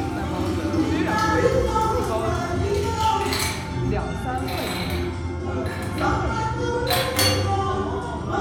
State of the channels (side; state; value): both; identical; correlation 1.00